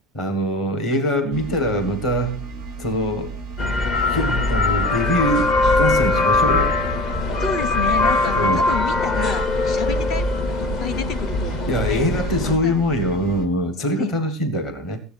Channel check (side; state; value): both; normal; correlation 0.36